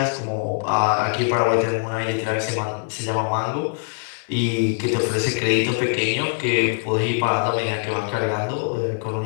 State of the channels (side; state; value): right; silent; digital silence